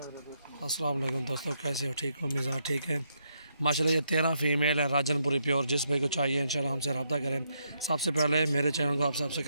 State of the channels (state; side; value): inverted; both; correlation -0.78